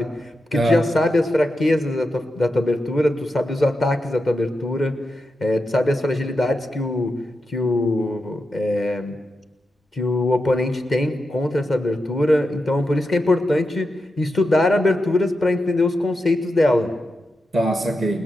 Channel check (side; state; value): both; normal; correlation 0.88